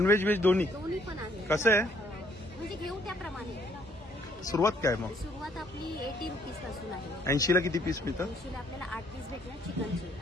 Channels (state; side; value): normal; both; correlation 0.65